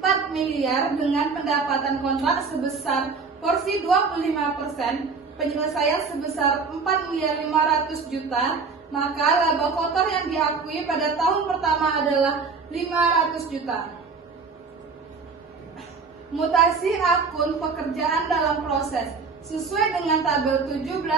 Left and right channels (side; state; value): left; quieter; 4.8 dB